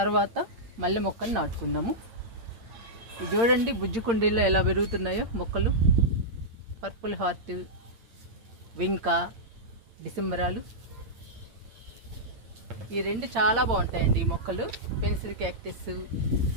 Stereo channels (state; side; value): late; left; 8.7 ms